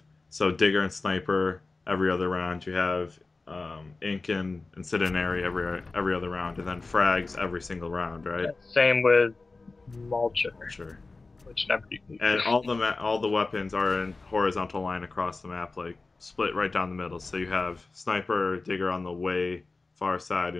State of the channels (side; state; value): right; quieter; 3.6 dB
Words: Digger and Sniper every other round. You have Ink and Incendiary every other round, and then frags every single round, right? Same with Mulcher. Sure. Which never. And all the weapons are in horizontal line across the map, like split right down the middle. So you have Sniper, Digger on the way far side,